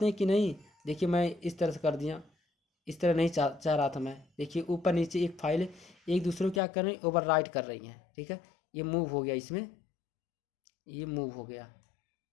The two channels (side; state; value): right; drops out; at 6.6 s